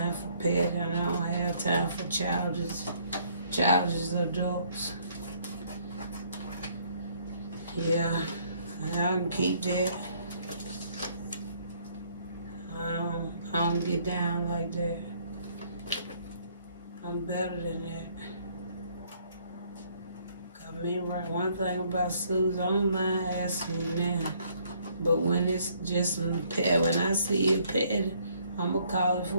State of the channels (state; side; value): inverted; both; correlation -0.64